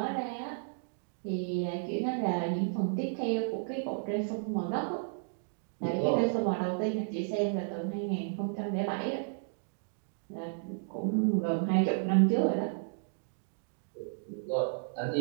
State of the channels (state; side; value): silent; left; digital silence